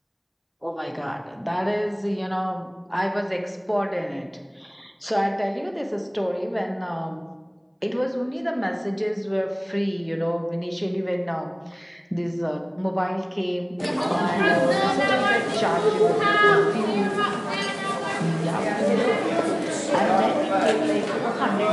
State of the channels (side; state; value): both; identical; correlation 1.00